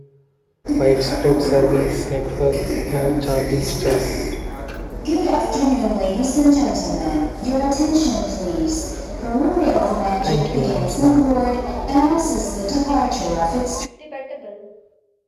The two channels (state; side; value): identical; both; correlation 1.00